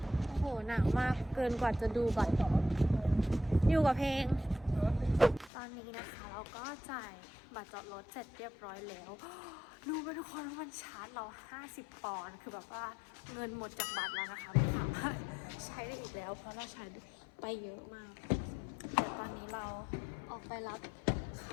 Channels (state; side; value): drops out; right; at 5.5 s